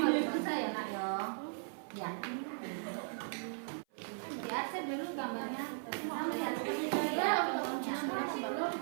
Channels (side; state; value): left; silent; 53 dB below the other